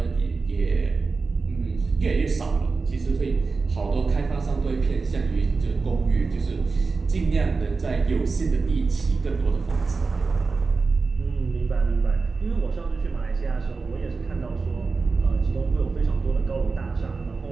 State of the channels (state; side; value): quieter; left; 4.3 dB